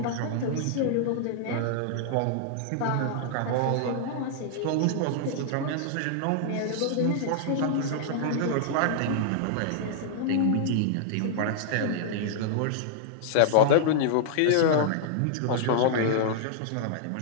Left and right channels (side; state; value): both; different; correlation -0.01